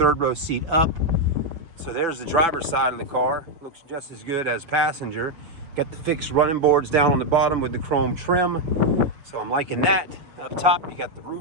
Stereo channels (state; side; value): late; left; 6.0 ms